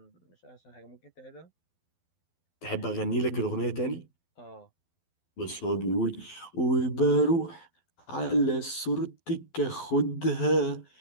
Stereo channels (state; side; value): late; right; 12 ms